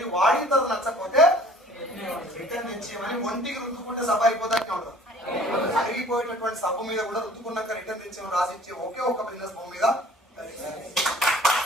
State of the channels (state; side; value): normal; both; correlation 0.51